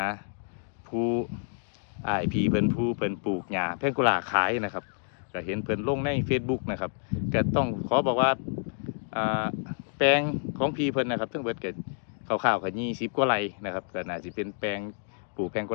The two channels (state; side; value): silent; right; digital silence